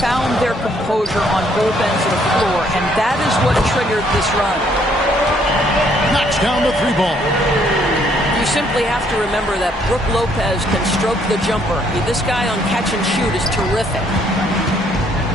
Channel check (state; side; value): normal; both; correlation 0.67